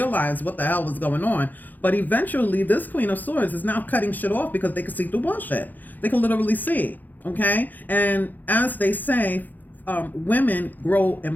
what the hell was going on. But eventually, this Queen of Swords is now cutting shit off because they can see through bullshit. They can literally see, okay? And as they say, women grow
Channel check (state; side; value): late; right; 0.085 ms